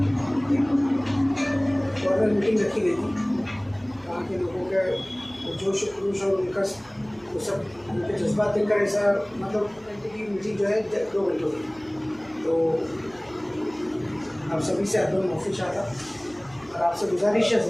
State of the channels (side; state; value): right; noise; hum, 28 dB below the sound